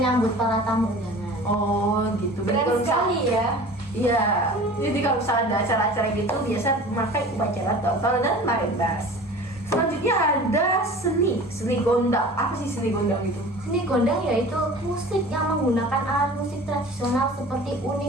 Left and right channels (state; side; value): normal; both; correlation 0.41